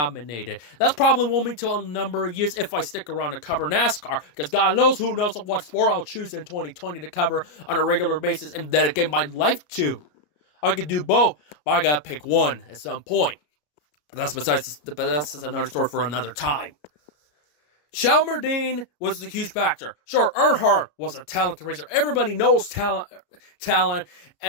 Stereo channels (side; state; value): right; late; 34 ms